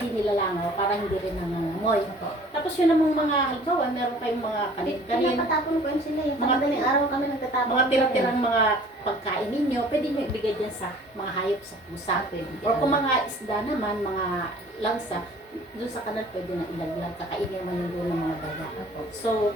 nilalangaw, para hindi rin nangangamoy. Tapos yun namang mga, halimbawa, meron kayong mga kanin, Pinapatapon ko yun sila eh. Mga- Madaling araw kami nagtatapon. mga tira-tirang mga pagkain ninyo, pwede nyo ibigay dyan sa mga hayop sa pusa. Or kung mga isda naman, mga langsa, doon sa kanal pwede na ilaglag, kakainin naman yung doon ng mga daga. So,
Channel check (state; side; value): normal; both; correlation 0.50